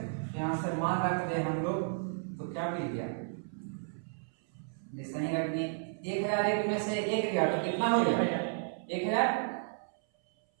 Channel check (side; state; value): left; silent; 56 dB below the other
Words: यहाँ से मान रख दे हम लोग तो क्या मिल गया, जैसे ही रख दिए 1001 में से 1 गया तो कितना हो गया